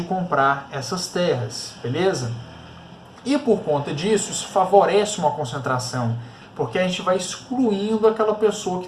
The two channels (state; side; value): identical; both; correlation 1.00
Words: comprar essas terras, beleza? E por conta disso, isso favorece uma concentração, porque a gente vai excluindo aquela pessoa